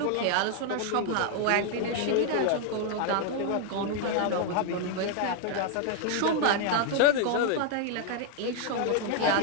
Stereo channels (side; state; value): both; different; correlation 0.00